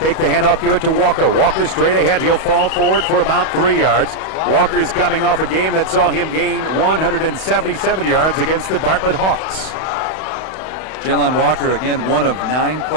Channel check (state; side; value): late; right; 31 ms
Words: the handoff, give it to Walker. Walker straight ahead. He'll fall forward for about 3 yards. Walker's coming off a game that saw him gain 177 yards against the Bartlett Hawks. Jalon Walker, again, one of 9